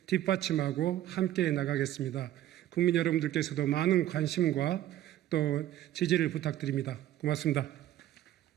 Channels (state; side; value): quieter; left; 13.1 dB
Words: 뒷받침하고 함께 나가겠습니다. 국민 여러분들께서도 많은 관심과 또 지지를 부탁드립니다. 고맙습니다.